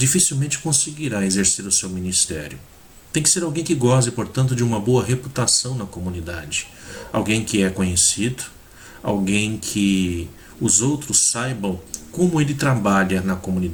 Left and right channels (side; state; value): both; identical; correlation 1.00